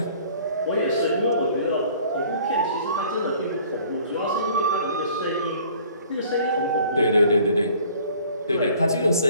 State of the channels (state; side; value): inverted; both; correlation -0.53